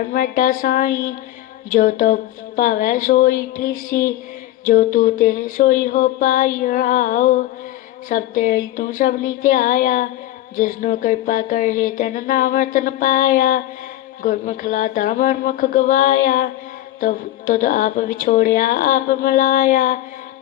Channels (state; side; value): quieter; right; 14.5 dB